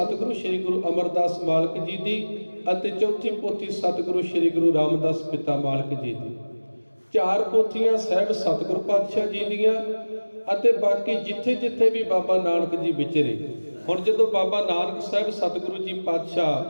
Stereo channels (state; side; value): inverted; both; correlation -1.00